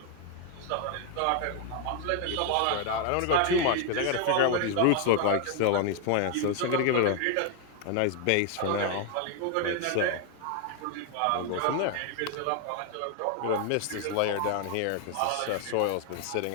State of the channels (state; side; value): different; both; correlation 0.00